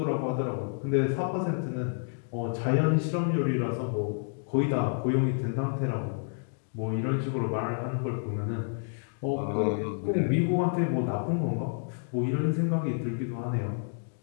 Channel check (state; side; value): silent; right; 58 dB below the other